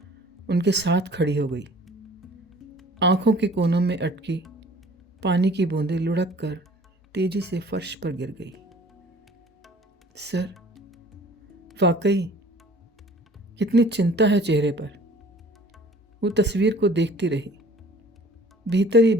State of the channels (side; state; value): both; normal; correlation 0.50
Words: उनके साथ खड़ी हो गई। आंखों के कोनों में अटकी पानी की बूंदें लुढ़क कर तेजी से फर्श पर गिर गई। सर, वाकई कितनी चिंता है चेहरे पर। वो तस्वीर को देखती रही। भीतर ही